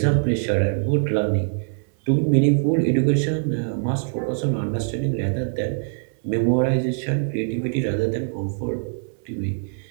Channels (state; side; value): silent; left; 63 dB below the other